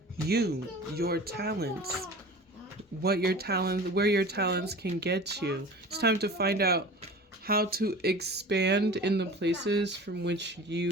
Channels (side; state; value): both; normal; correlation 0.38